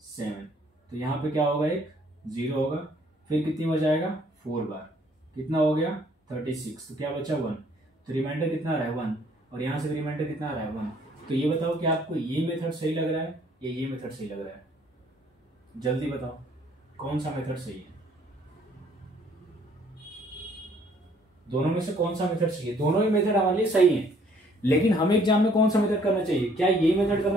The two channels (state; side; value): normal; both; correlation 0.62